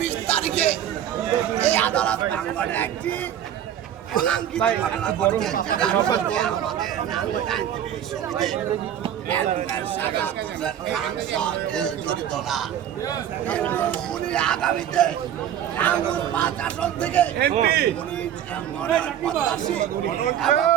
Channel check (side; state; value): left; quieter; 10.3 dB